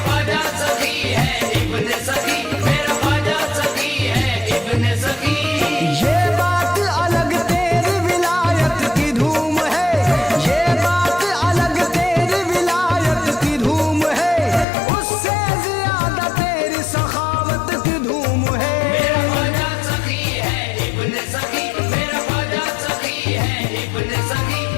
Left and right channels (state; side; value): drops out; right; at 14.7 s